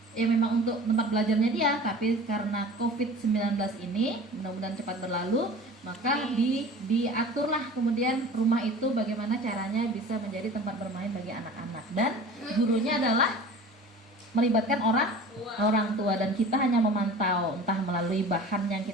ya memang untuk tempat belajarnya dia, tapi karena COVID-19 ini mudah-mudahan cepat berlalu, maka diaturlah kemudian rumah itu bagaimana caranya bisa menjadi tempat bermain bagi anak-anak, dan gurunya adalah melibatkan orang tua, dan kita hanya memantau entah melalui bahan yang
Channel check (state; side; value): normal; both; correlation 0.41